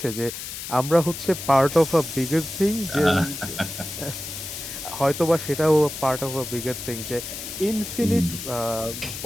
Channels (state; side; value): noise; left; hiss, 8 dB below the sound